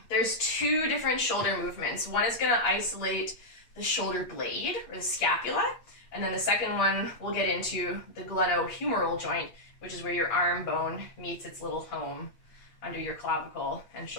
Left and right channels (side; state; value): right; late; 8.5 ms